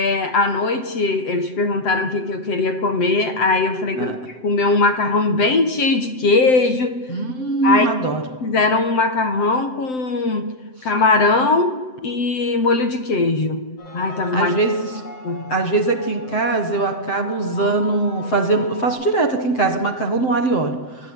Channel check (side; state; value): right; late; 7.8 ms